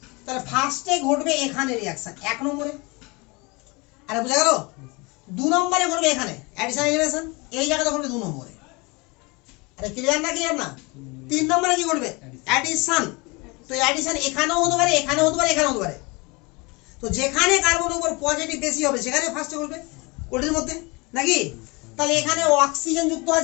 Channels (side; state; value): right; quieter; 26.2 dB